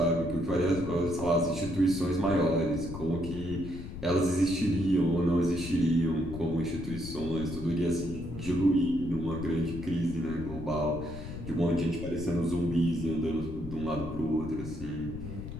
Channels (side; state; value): left; noise; rumble, 10 dB below the sound